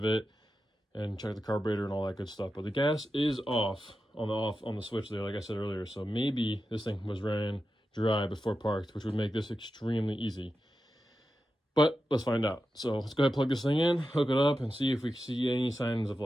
it and check the carburetor and all that good stuff. But the gas is off on the switch there, like I said earlier. So maybe this thing was ran dry before parked, which would make this extremely easy. But let's find out. So let's go ahead and plug this thing in, hook it up, and see if we see any signs of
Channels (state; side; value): normal; both; correlation 0.91